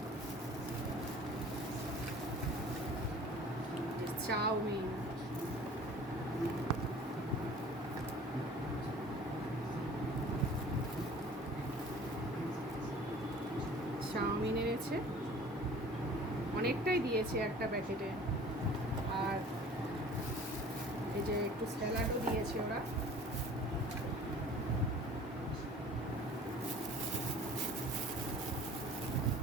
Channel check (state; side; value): normal; both; correlation 0.46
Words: চাউমিন, চাউমিন এনেছে, অনেকটাই দিয়েছে একটা প্যাকেটে। আর এই যে একটু স্যালাডও দিয়েছে ওরা।